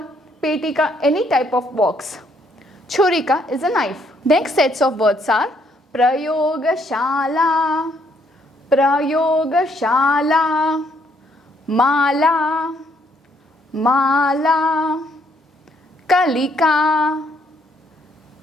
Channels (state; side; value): normal; both; correlation 0.69